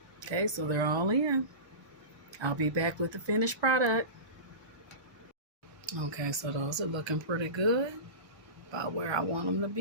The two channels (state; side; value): late; left; 1.2 ms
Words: Okay, so they're all in. I'll be back with the finished product. Okay, so those are looking pretty good, about where I want them to